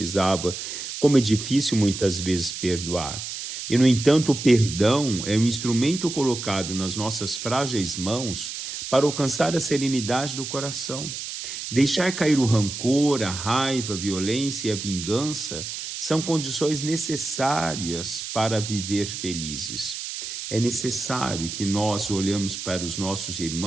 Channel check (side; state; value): right; noise; hiss, 7 dB below the sound